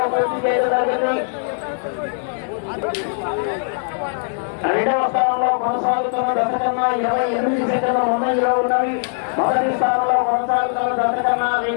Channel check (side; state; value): right; silent; 60 dB below the other